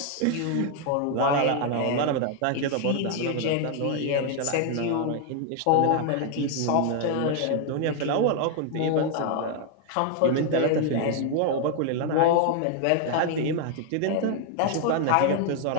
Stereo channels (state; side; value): different; both; correlation 0.00